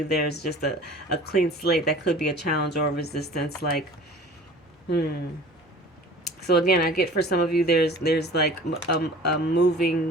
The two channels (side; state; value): both; normal; correlation 0.44